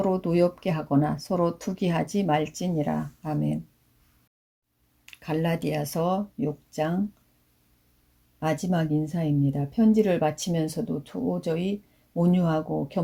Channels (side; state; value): both; identical; correlation 1.00